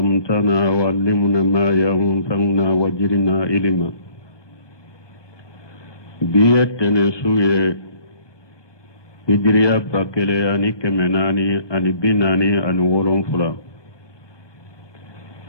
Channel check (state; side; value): late; right; 1.2 ms